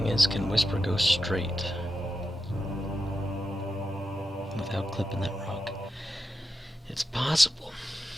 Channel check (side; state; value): both; normal; correlation 0.89